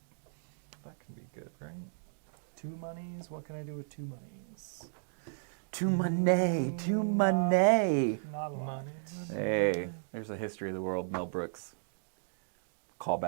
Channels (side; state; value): left; silent; digital silence